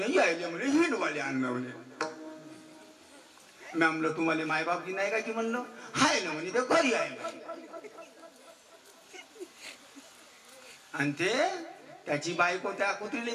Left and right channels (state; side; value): identical; both; correlation 1.00